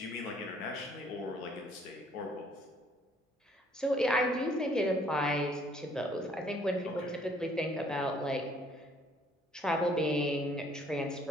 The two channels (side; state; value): both; normal; correlation 0.62